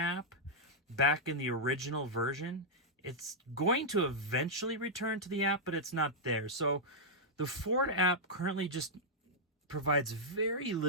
back in the original version. It's going to eventually return to the app, but it's not there. So, the Ford app currently just provides very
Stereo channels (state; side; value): normal; both; correlation -0.06